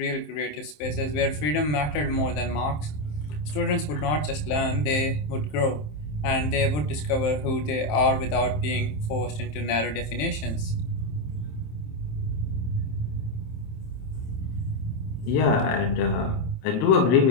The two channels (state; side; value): late; right; 27 ms